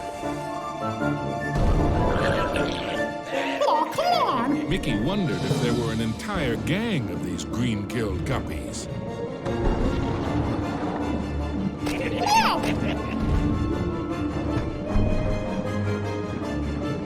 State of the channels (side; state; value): both; identical; correlation 1.00